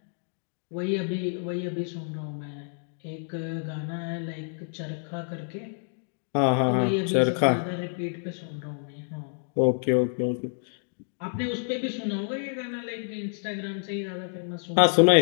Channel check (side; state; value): right; silent; digital silence